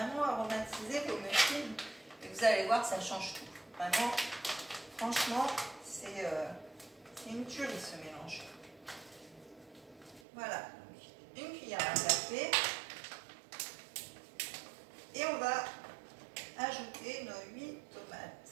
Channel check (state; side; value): drops out; left; at 10.2 s